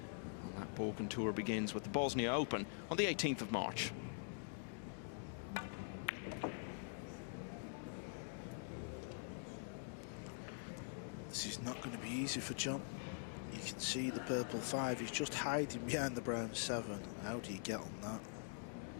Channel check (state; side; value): silent; right; digital silence